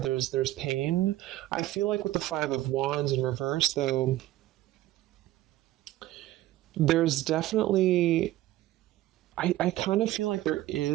pain. I feel like with the Five of Wands in reverse, though, there's definitely I kind of feel like there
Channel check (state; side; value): quieter; left; 15.5 dB